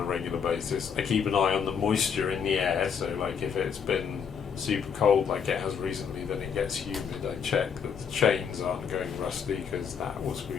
regular basis. I keep an eye on the moisture in the air, so like if it's been super cold like it has recently, then it gets humid. I check that the chains aren't going rusty because that will screw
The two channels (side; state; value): right; quieter; 6.9 dB